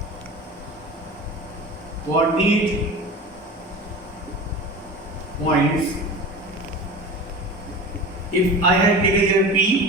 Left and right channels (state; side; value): normal; both; correlation 0.33